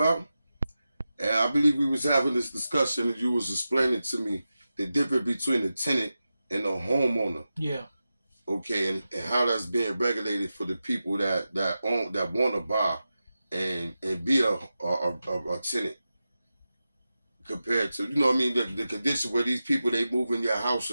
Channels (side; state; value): both; inverted; correlation -0.92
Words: And I believe we was having this discussion and you was explaining to me the difference between the tenant and the homeowner. Yeah. Okay, and how that's being regulated for the people that want to buy and be a tenant compared to, you know what I mean, the condition where these people, they move in your house